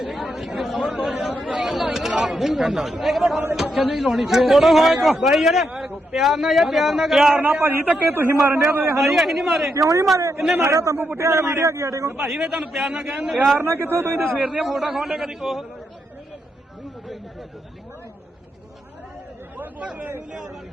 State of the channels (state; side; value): normal; both; correlation 0.81